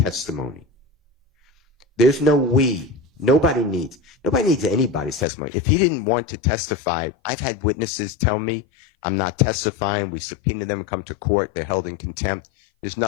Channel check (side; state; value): right; drops out; at 5.2 s